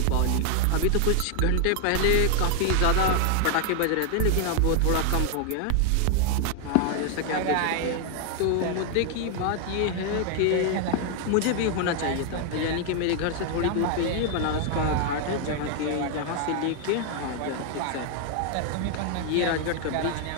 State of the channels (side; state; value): both; different; correlation 0.00